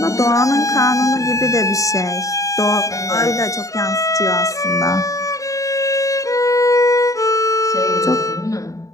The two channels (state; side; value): late; right; 0.16 ms